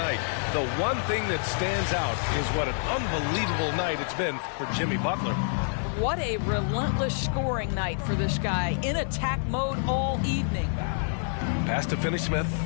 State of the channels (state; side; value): silent; right; digital silence